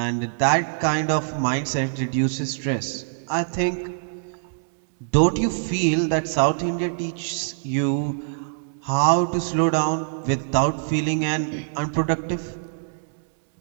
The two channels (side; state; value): left; silent; digital silence